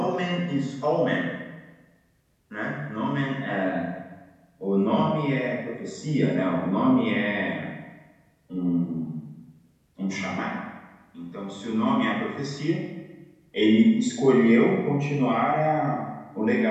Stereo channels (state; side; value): identical; both; correlation 1.00